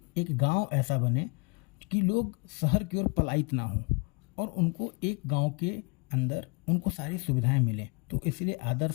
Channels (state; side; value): quieter; right; 31.0 dB